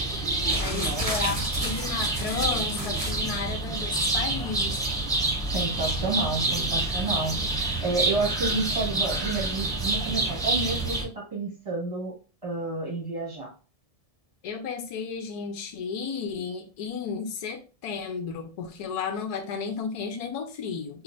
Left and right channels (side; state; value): right; late; 1.7 ms